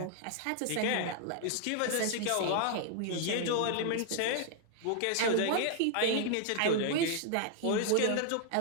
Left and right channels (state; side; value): different; both; correlation 0.00